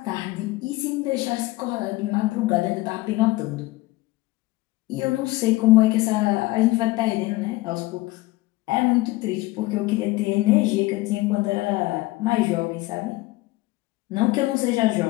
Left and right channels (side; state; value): right; quieter; 19.6 dB